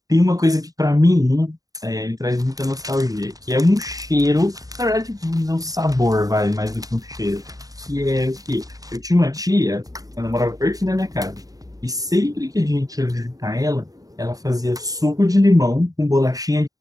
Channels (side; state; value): left; late; 0.18 ms